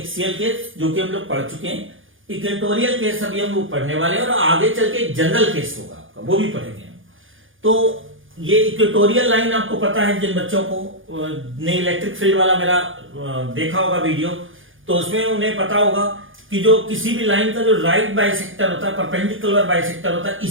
केस जो कि हम लोग पढ़ चुके हैं, इक्वेटोरियल केस अभी हम लोग पढ़ने वाले हैं, और आगे चल के जनरल केस होगा आपका, वो भी पढ़ेंगे। तो ये इक्वेटोरियल लाइन आपको पता है, जिन बच्चों को ने इलेक्ट्रिक फील्ड वाला मेरा देखा होगा वीडियो, तो उसमें उन्हें पता होगा कि जो किसी भी लाइन का जो राइट बाइसेक्टर होता है, परपेंडिकुलर बाइसेक्टर होता है,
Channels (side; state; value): left; late; 0.58 ms